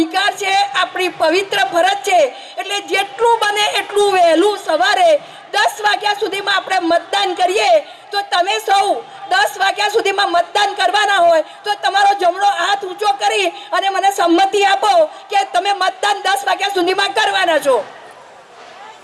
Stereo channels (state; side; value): identical; both; correlation 1.00